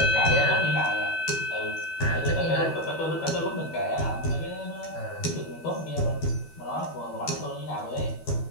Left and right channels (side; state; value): right; late; 12 ms